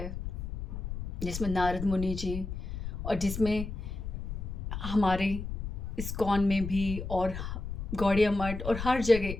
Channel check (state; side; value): noise; left; rumble, 6 dB below the sound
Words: जिसमें नारद मुनि जी और जिसमें हमारे इस्कॉन में भी और गौड़िया मठ और हर